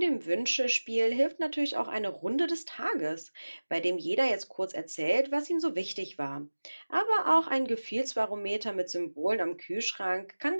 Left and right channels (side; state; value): both; inverted; correlation -1.00